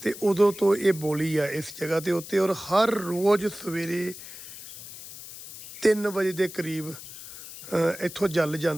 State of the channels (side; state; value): left; noise; hiss, 14 dB below the sound